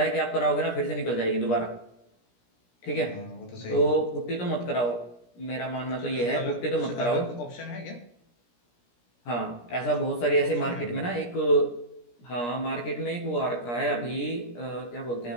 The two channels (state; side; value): late; right; 17 ms